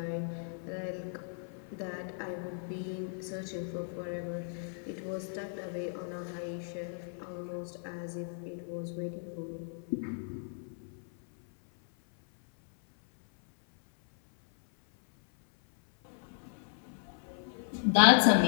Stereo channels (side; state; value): right; silent; 55 dB below the other